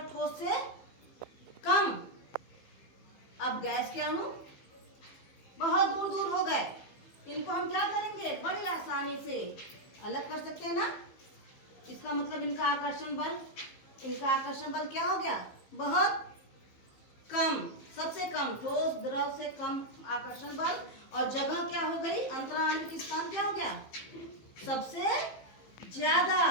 ठोस से कम। अब गैस के अणु बहुत दूर दूर हो गए, इनको हम क्या करेंगे? बड़ी आसानी से अलग कर सकते हैं ना। इसका मतलब इनका आकर्षण बल क्या हो गया? बहुत कम, सबसे कम। ठोस द्रव से कम आकर्षण बल। और जगह क्या हो गई? अंतराण्विक स्थान क्या हो गया? सबसे ज्यादा।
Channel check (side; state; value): right; late; 15 ms